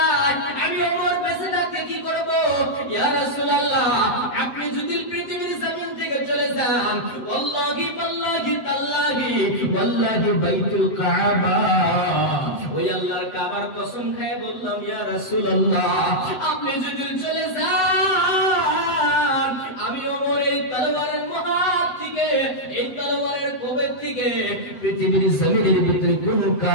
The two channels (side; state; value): right; late; 8.0 ms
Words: আমি ওমর বেঁচে থাকতে কি করব? ইয়া রাসূলুল্লাহ, আপনি যদি পৃথিবীর জমিন থেকে চলে যান, ওয়াল্লাহি ওয়াল্লাহি তাল্লাহি ওয়াল্লাহি বাইতুল কাবা, ওই আল্লাহর কাবার কসম খেয়ে বললাম, ইয়া রাসূলুল্লাহ, আপনি যদি চলে যান, আমি ওমর এই তলোয়ারের মহাত থেকে, এই তলোয়ারের কোবের থেকে পৃথিবীর জমিনের ভিতরে কোন